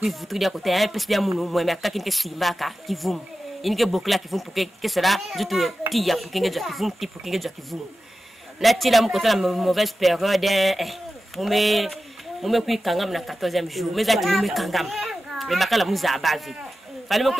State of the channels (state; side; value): normal; both; correlation 0.93